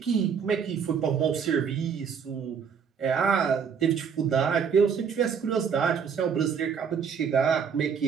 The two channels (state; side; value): quieter; left; 6.8 dB